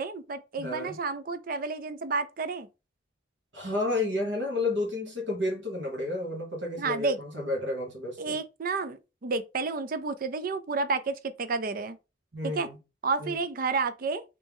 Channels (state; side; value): normal; both; correlation 0.08